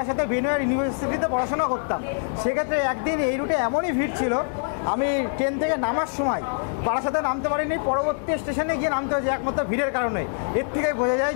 বেনুয়ার ইউনিভার্সিটিতে পড়াশোনা করতাম। সেক্ষেত্রে একদিন এই রুটে এমনই ভিড় ছিল, আমি ট্রেন থেকে নামার সময় বারাসাতে নামতে পারিনি, পরবর্তী স্টেশনে গিয়ে নামতে হয়েছে একমাত্র ভিড়ের কারণে। এর থেকে বোঝা যায়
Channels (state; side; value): silent; right; digital silence